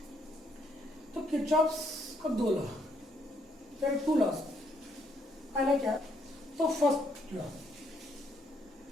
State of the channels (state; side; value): normal; both; correlation 0.72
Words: तो किरचॉफ्स का दो law, there are two laws. पहला क्या, तो फर्स्ट लॉ